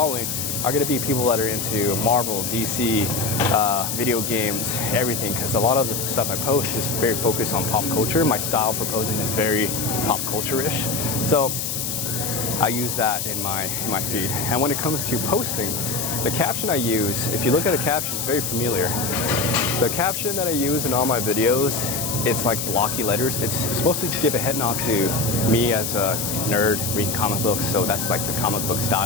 are going to be people that are into Marvel, DC, video games, everything, because a lot of the stuff I post is very focused on pop culture. My style for posing is very pop culture-ish. So I use that in my feed. And when it comes to posting, the caption I use, if you look at a caption, it's very familiar. The caption that I use in all my videos, it's like blocky letters. It's supposed to give a head nod to me as a nerd reading comic books, so that's like the comic book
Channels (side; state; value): left; noise; hiss, 2 dB below the sound